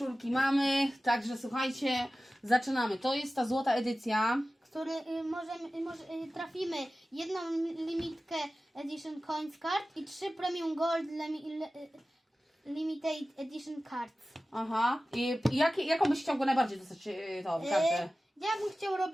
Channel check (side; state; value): both; normal; correlation 0.96